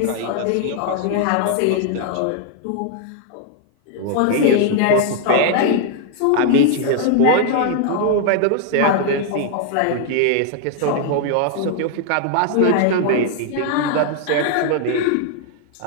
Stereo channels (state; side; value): different; both; correlation 0.00